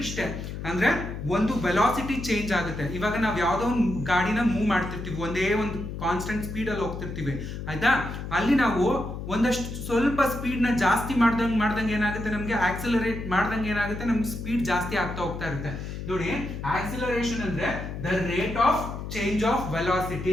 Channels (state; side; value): noise; left; hum, 7 dB below the sound